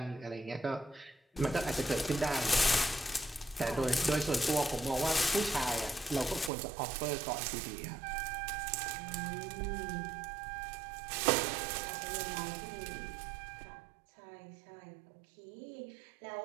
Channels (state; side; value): drops out; left; at 6.5 s